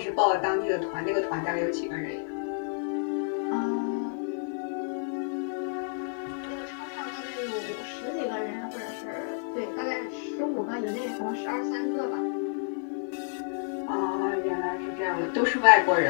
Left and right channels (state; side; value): silent; right; 57 dB below the other